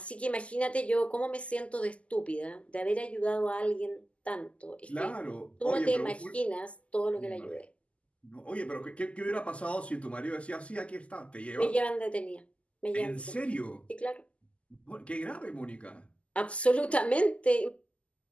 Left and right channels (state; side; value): late; right; 0.060 ms